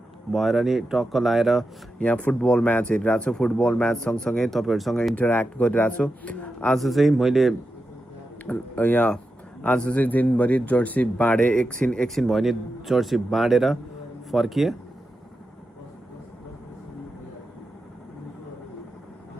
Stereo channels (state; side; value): normal; both; correlation 0.89